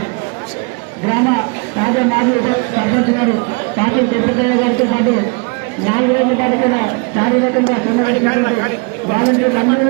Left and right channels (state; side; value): quieter; left; 31.3 dB